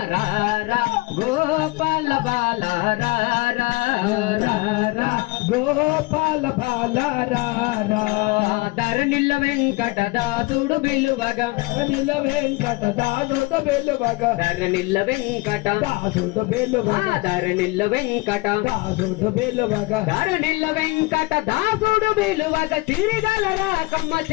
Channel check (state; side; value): quieter; right; 23.4 dB